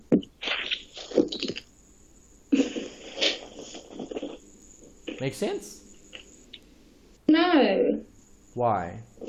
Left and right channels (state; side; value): identical; both; correlation 1.00